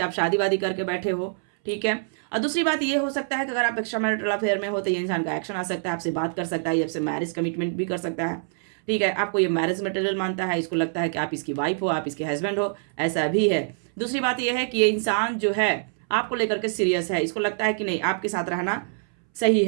आप शादी वादी करके बैठे हो। ठीक है, और दूसरी बात ये हो सकता है कि अगर आप एक्स्ट्रा मैरिटल अफेयर में हो तो ये इंसान का एक्शन आ सकता है, आपसे बात कर सकता है, आपसे मैरिज कमिटमेंट भी कर सकता है। ठीक है, आपको ये मैरिज मटेरियल मानता है, इसको लगता है कि आप इसकी वाइफ हो, आप इसके हस्बैंड हो, ऐसा भी है। दूसरी बात यह है कि ये इंसान जो है आपको लेकर के सीरियस है, इसको लगता है कि नहीं, आपके साथ रहना सही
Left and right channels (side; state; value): left; silent; 61 dB below the other